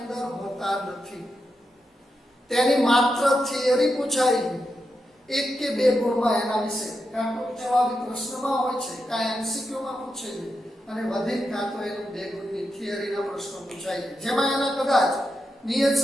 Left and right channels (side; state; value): both; normal; correlation 0.86